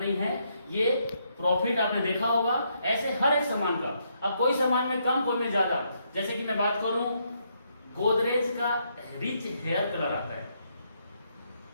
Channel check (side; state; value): both; inverted; correlation -0.75